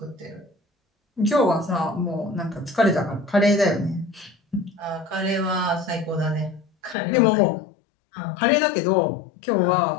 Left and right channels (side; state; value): right; drops out; at 7.0 s